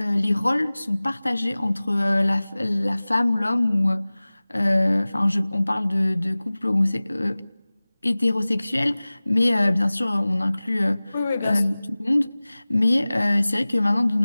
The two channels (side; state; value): both; inverted; correlation -0.99